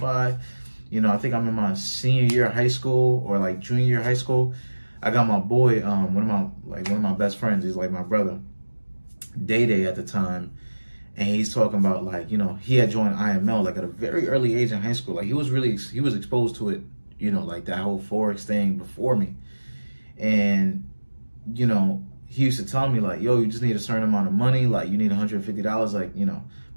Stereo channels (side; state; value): both; inverted; correlation -1.00